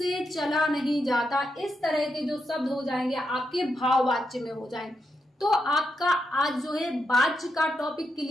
चला नहीं जाता। इस तरह के जो शब्द हो जाएंगे आपके भाववाच्य में हो जाएंगे। तो आपका आज जो है वाच्य का टॉपिक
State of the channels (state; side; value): normal; both; correlation 0.83